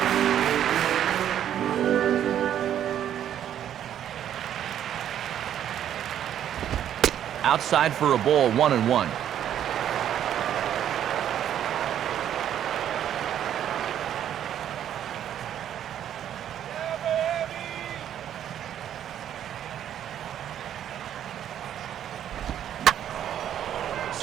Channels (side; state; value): left; quieter; 10.3 dB